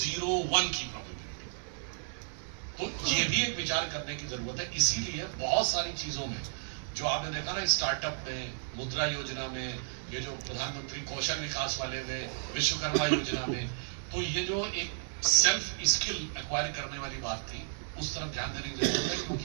की प्रोबेबिलिटी। तो ये भी एक विचार करने की जरूरत है। इसीलिए बहुत सारी चीजों में जो आपने देखा ना, स्टार्टअप में, मुद्रा योजना में, ये जो प्रधानमंत्री कौशल विकास वाले में, विश्वकर्मा योजना में, तो ये जो एक सेल्फ स्किल एक्वायर करने वाली बात थी, उस तरफ ध्यान देने की जरूरत है। क्योंकि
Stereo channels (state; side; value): silent; left; digital silence